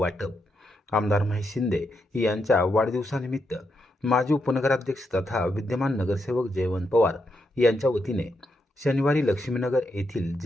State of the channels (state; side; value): normal; both; correlation 0.82